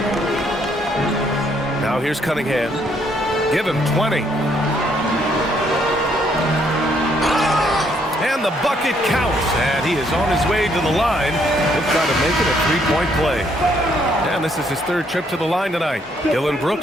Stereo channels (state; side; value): normal; both; correlation 0.69